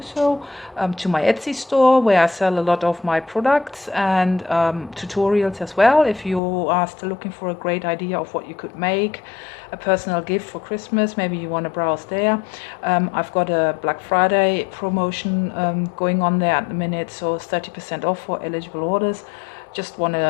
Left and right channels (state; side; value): drops out; right; at 6.4 s